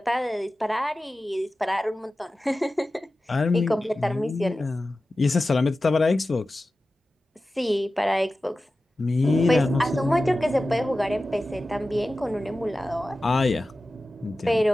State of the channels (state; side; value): normal; both; correlation 0.95